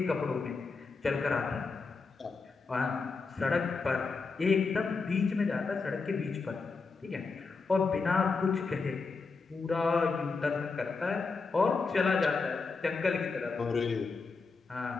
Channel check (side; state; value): right; quieter; 4.4 dB